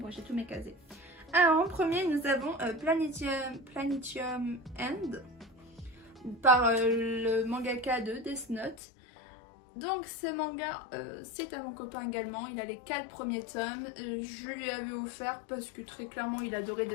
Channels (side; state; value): right; drops out; at 8.8 s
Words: j'ai tous mes casés. Alors, en premier, nous avons Planetium End par le mangaka de Death Note. Donc ce manga, c'est à mon copain également, il a les 4 premiers tomes, je lui avais offert parce que très clairement il adorait